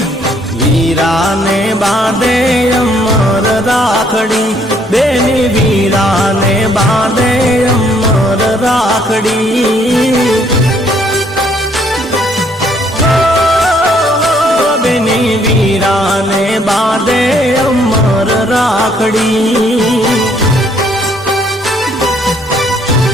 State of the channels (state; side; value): normal; both; correlation 0.66